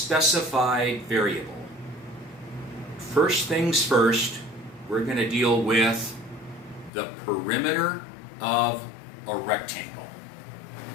variable. First things first, we're going to deal with the perimeter of a rectangle.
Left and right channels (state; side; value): drops out; right; at 6.9 s